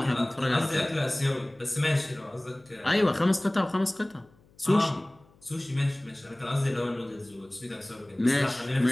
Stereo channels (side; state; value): left; noise; hum, 30 dB below the sound